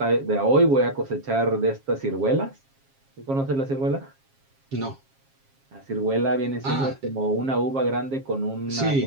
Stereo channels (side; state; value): left; late; 7.4 ms